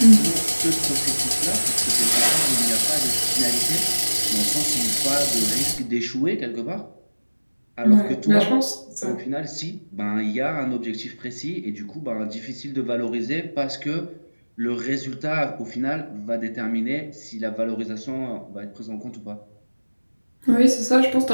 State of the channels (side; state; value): both; inverted; correlation -1.00